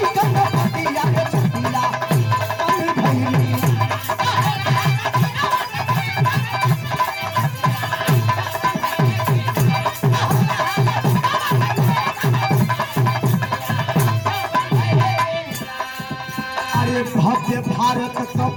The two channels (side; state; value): both; identical; correlation 1.00